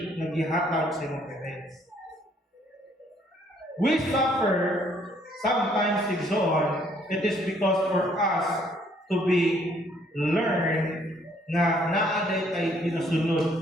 na gihatag sa imong parents. We suffer sometimes igsoon, it is because for us to be learn na naaday tay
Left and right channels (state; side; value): normal; both; correlation 0.65